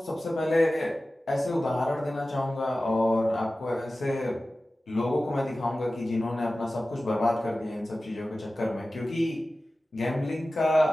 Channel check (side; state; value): both; normal; correlation 0.96